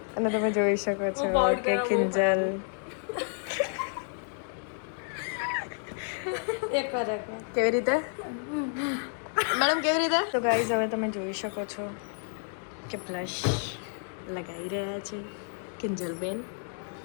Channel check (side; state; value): right; silent; 56 dB below the other